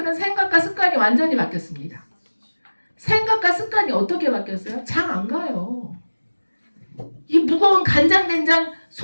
생각과 습관이 완전히 바뀌었습니다. 생각과 습관이 어떻게 바뀌었어요? 장 안 가요. 이 무거운 간장된장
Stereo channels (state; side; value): inverted; both; correlation -1.00